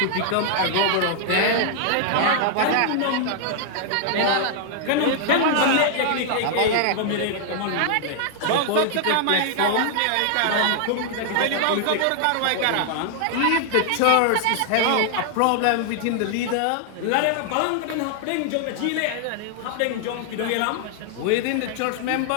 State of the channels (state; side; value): different; both; correlation 0.00